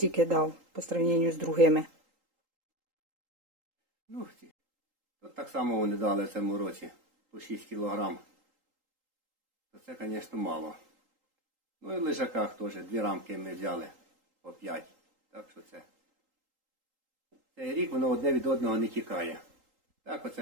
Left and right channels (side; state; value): left; late; 3.8 ms